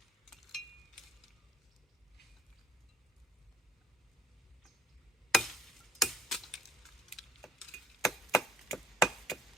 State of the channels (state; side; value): normal; both; correlation 0.57